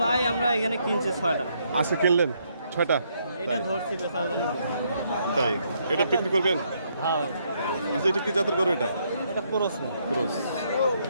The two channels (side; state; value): both; inverted; correlation -0.73